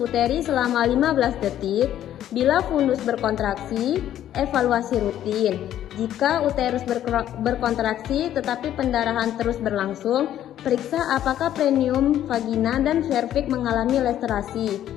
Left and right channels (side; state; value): right; quieter; 11.6 dB